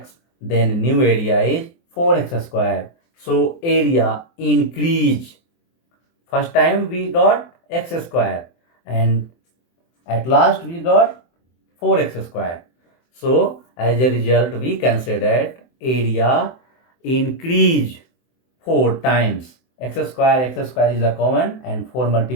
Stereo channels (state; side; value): late; right; 24 ms